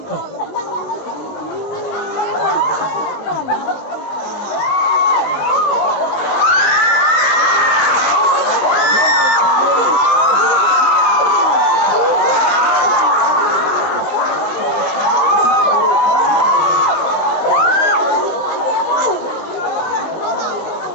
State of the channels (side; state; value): right; late; 20 ms